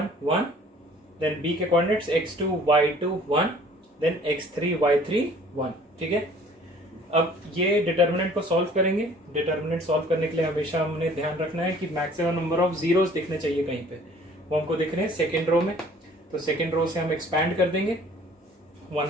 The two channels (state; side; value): normal; both; correlation 0.53